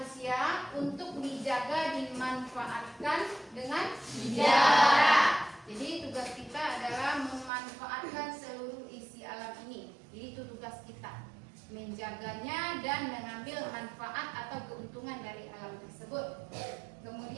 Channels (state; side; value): drops out; left; at 7.5 s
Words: untuk dijaga, dimanfaatkan dengan bijak. Jadi tugas kita adalah memanfaatkan seluruh isi alam ini. Jadi itu tugas kita, menjaganya dan mengambil manfaat atau keuntungan dari alam tersebut.